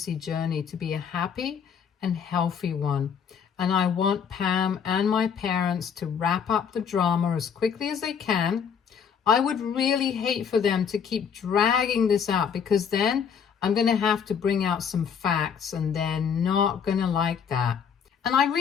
journey to be a happy and healthy one. And I want Pam and my parents to wrap up the drama as quickly as they can. I would really hate for them to keep dragging this out, because then I'm going to have to bring out some facts and they're not going to like that. And I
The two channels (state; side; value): quieter; right; 7.2 dB